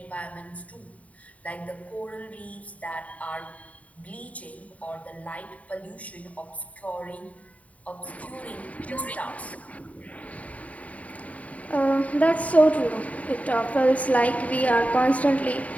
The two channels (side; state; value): right; late; 0.069 ms